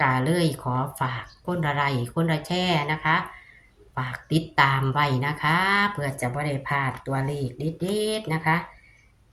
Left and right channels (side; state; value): both; identical; correlation 1.00